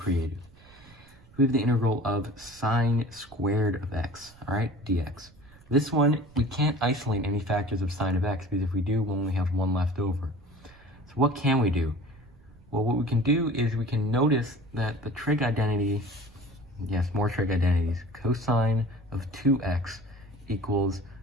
We have the integral of sine squared of x, all right, dx. This one, we can't isolate any factors of sine of x, because if we do, we'll only have one left over. So what can we do? Well, what we can do is we can notice that the trig identity, yes, more trig identities, cosine of 2x equals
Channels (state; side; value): noise; right; rumble, 25 dB below the sound